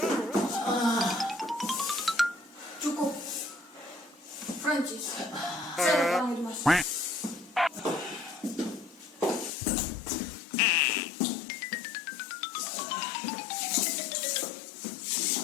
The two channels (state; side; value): drops out; right; at 9.5 s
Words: Cukup. Francis, saya panggil Mas.